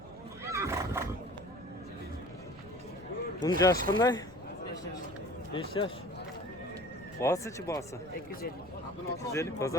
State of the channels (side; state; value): left; noise; rumble, 22 dB below the sound